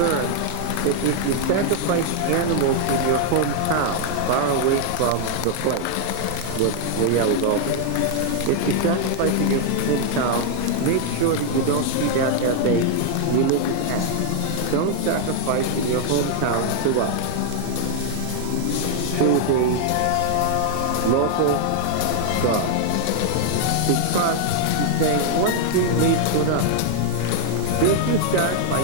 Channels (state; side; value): different; both; correlation 0.00